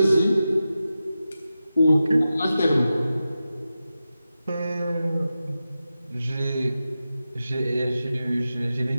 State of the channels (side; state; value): both; inverted; correlation -0.92